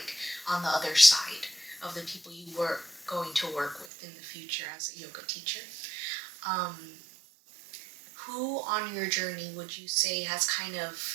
on the other side of the people you were going to work with in the future as a yoga teacher. Who on your journey would you say has kind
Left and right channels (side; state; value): left; drops out; at 3.9 s